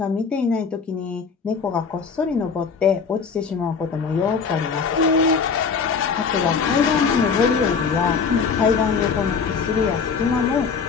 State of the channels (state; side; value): quieter; right; 5.6 dB